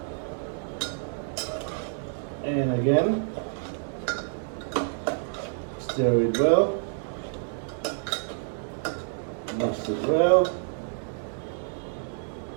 And again, stir it well. Mix it well.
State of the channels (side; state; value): left; silent; digital silence